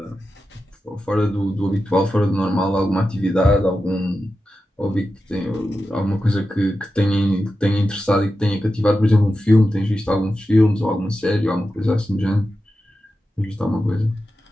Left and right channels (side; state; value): both; normal; correlation 0.91